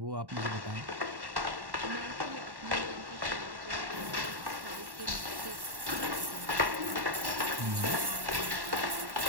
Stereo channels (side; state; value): left; late; 1.1 ms